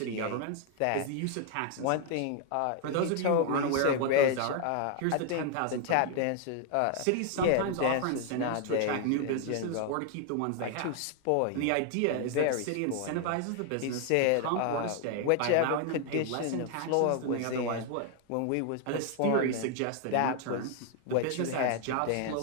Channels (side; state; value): both; different; correlation 0.00